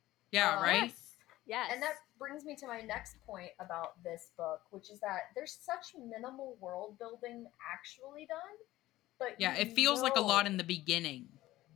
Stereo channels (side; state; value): right; quieter; 16.4 dB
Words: Yeah, right? Yes. Yes. And that brings me to my next point about this book, which is that there's such minimal world building actually done, but Yeah, you it feels like a lot know- in the beginning.